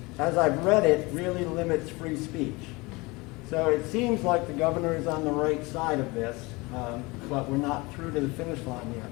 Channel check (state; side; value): quieter; right; 24.3 dB